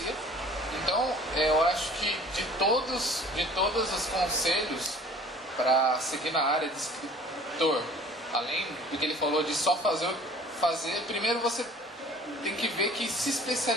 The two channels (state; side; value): normal; both; correlation 0.49